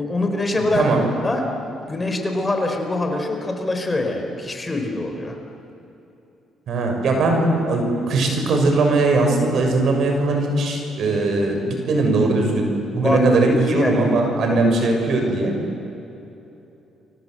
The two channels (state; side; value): normal; both; correlation 0.72